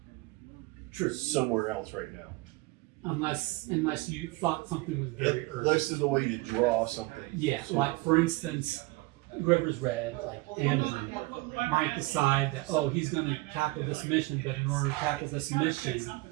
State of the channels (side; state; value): left; quieter; 22.2 dB